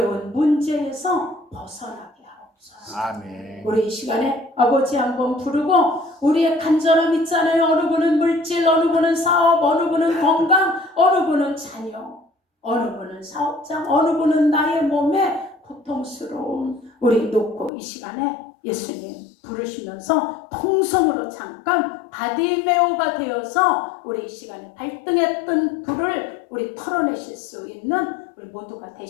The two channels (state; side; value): drops out; right; at 17.7 s